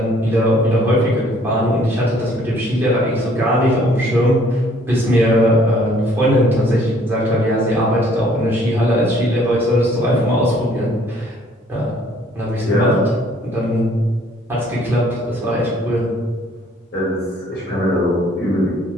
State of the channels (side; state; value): both; normal; correlation 0.60